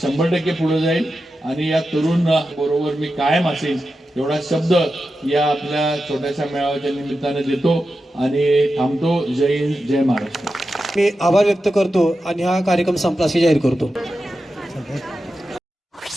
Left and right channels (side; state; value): both; normal; correlation 0.91